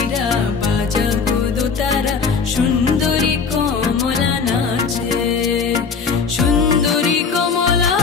বাজা গো দোতারা, সুন্দরী কমলা নাচে। সুন্দরী কমলা,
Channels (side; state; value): right; quieter; 5.4 dB